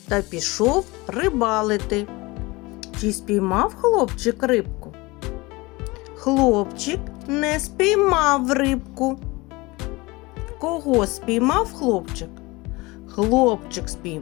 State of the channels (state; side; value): quieter; right; 23.0 dB